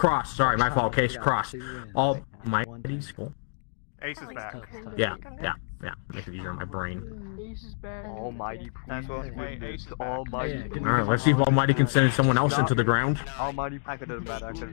Sorry, my fault. Case, Cross. Almighty, Skull. Ace is back. Yeah. Make it easier on my brain. Ace is back. Almighty, please. Ace is back. Almighty. All right, let's see if Almighty can send someone else into the ground. Almighty, I could have done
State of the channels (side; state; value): right; silent; digital silence